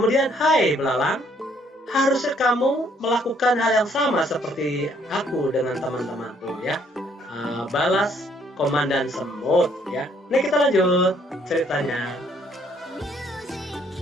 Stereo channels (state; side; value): normal; both; correlation 0.66